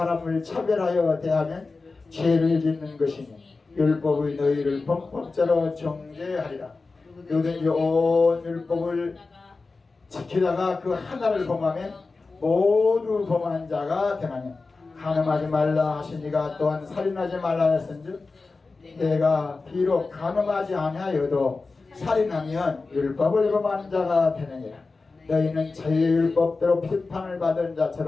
차별하여 대하면 죄를 짓는 것이니 율법의 너희를 범법자로 정죄하리라. 누구든지 온 율법을 지키다가 그 하나를 범하면 모두 범한 자가 되나니 간음하지 말라 하시니가 또한 살인하지 말라 했은즉 내가 비록 간음하지 아니하여도 살인하면 율법을 범한 자가 되느니라. 너희는 자유의 율법대로批판을 받은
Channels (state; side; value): quieter; right; 3.9 dB